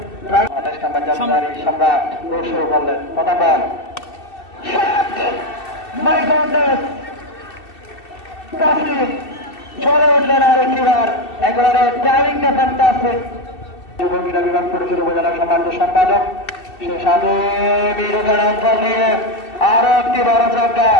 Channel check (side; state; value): right; late; 2.7 ms